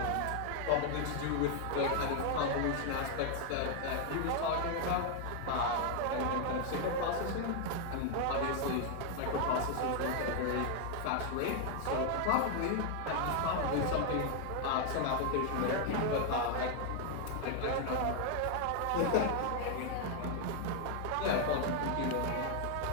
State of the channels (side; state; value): both; different; correlation 0.00